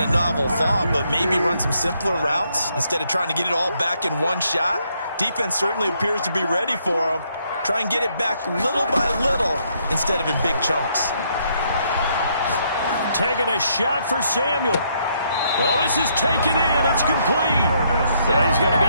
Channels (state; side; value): inverted; both; correlation -0.73